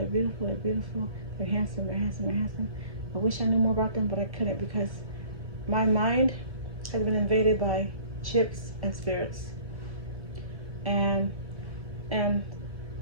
beautiful. They're beautiful. They're handsome. They're handsome. They're handsome. I wish I knew more about them, but I couldn't because my mind has been invaded by chips and spirits, and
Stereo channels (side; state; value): left; late; 1.1 ms